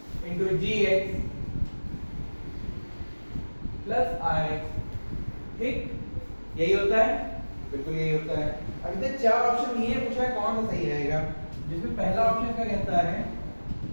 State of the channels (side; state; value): both; inverted; correlation -1.00